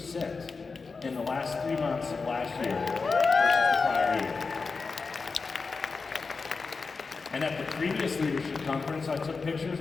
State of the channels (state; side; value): quieter; right; 4.5 dB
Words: in the last 3 months of last year versus the prior year. And at the previous leadership conference, I took pictures